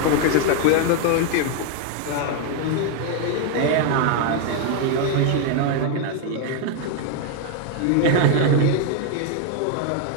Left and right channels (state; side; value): different; both; correlation 0.00